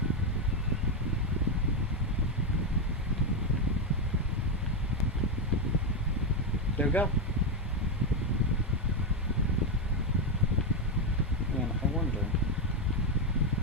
we go. And I wonder.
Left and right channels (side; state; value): both; normal; correlation 0.07